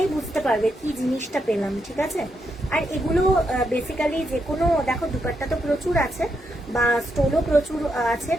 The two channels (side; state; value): both; normal; correlation 0.81